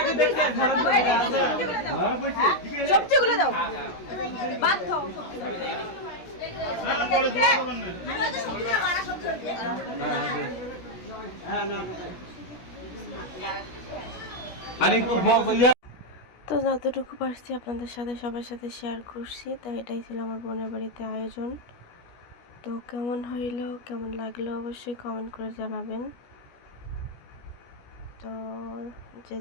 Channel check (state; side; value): late; right; 17 ms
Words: সবজিগুলো দাও ভাত খাও তো যতটুকু পারছি আপনাদের সাথে সবার সাথে শেয়ার করছি। তো এটাই ছিল আমার বোনের বাড়িতে আয়োজন। তো কেমন হইলো, কেমন লাগলো অবশ্যই কমেন্ট করে জানাবেন। তো যে